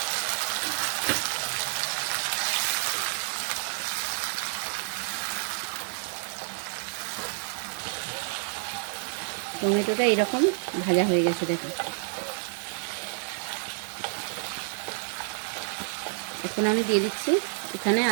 টমেটোটা এরকম ভাজা হয়ে গেছে দেখো। এখন আমি দিয়ে দিচ্ছি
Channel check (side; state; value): left; silent; digital silence